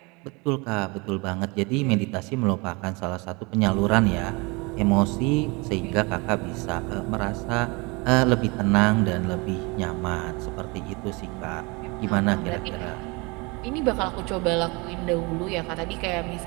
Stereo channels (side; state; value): left; quieter; 27.6 dB